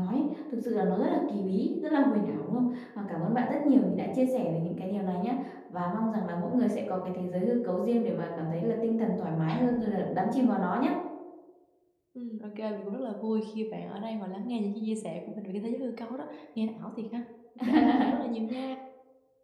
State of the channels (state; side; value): identical; both; correlation 1.00